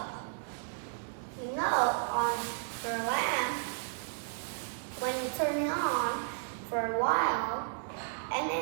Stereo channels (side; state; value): left; silent; digital silence